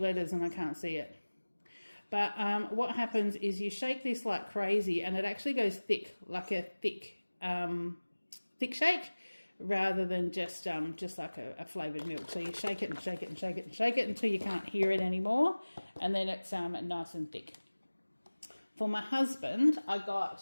and I can't see it. But what happens is you shake this like crazy and it actually goes thick, like a thick shake, rather than just like a flavoured milk. So you shake it and shake it and shake it and shake it until you can't hear it anymore, and then it's nice and thick. For my husband, I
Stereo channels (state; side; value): inverted; both; correlation -1.00